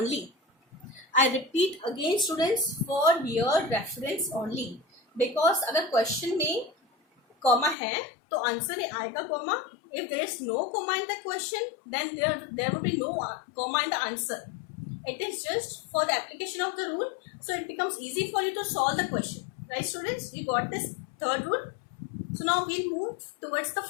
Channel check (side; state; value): right; drops out; at 7.8 s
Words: I repeat again, students, for your reference only. Because अगर question में comma है तो answer में आएगा comma. If there is no comma in the question, then there will be no comma in the answer. It is just for the application of the rule, so it becomes easy for you to solve the question, right, students? You got this third rule. So now we'll move towards the